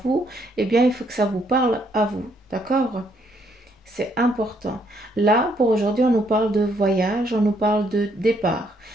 eh bien, il faut que ça vous parle à vous, d'accord? C'est important. Là, pour aujourd'hui, on nous parle de voyage, on nous parle de départ.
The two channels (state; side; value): normal; both; correlation 0.71